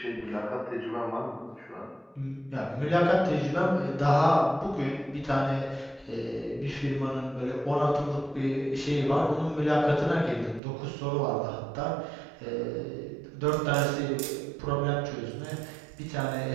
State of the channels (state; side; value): drops out; left; at 10.6 s